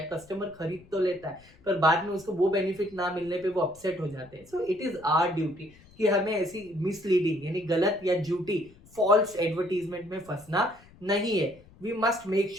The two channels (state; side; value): noise; left; rumble, 25 dB below the sound